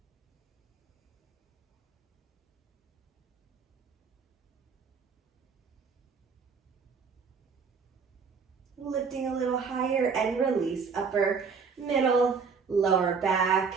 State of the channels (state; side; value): quieter; left; 5.5 dB